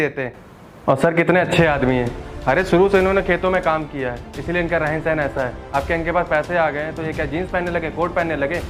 हैं। और सर कितने अच्छे आदमी हैं। अरे शुरू से इन्होंने खेतों में काम किया है, इसीलिए इनका रहन सहन ऐसा है। अब क्या इनके पास पैसे आ गए हैं तो ये क्या जीन्स पहनने लगे, कोट पहनने लगे,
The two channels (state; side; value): identical; both; correlation 1.00